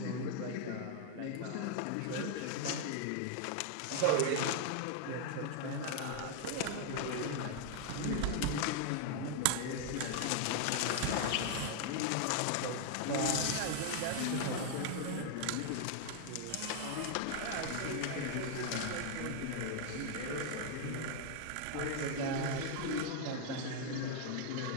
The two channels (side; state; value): both; different; correlation 0.00